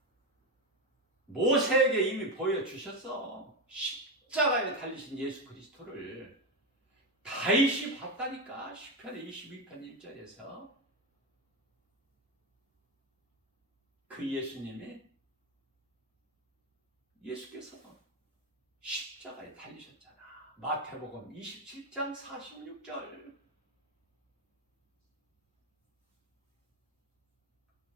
모세에게 이미 보여주셨어. 십자가에 달리신 예수 그리스도를 다윗이 봤다니까. 시편의 22편 1절에서 그 예수께서 십자가에 달리셨잖아. 마태복음 27장 46절.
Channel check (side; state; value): both; normal; correlation 0.13